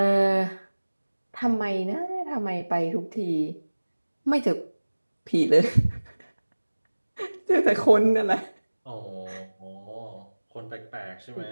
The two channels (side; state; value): both; inverted; correlation -1.00